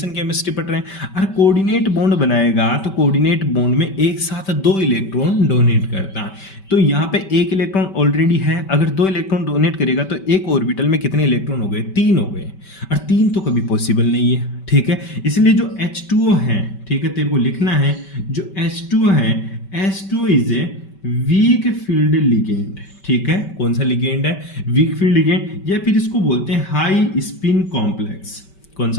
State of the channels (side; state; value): right; late; 5.2 ms